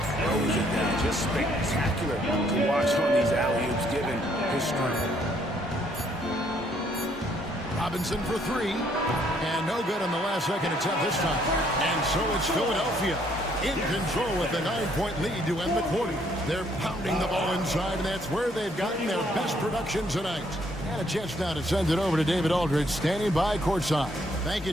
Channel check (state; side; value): normal; both; correlation 0.67